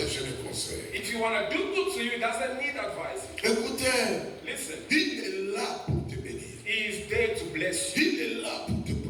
de conseils. If you want to do good to you, He doesn't need advices. Écoutez, Listen, il est là pour te bénir. He is there to bless you. Il est là pour te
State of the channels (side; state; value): both; identical; correlation 1.00